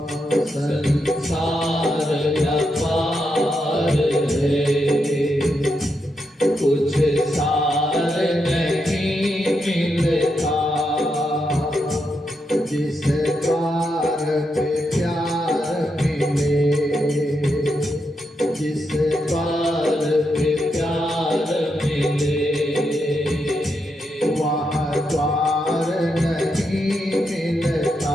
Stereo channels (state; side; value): normal; both; correlation 0.83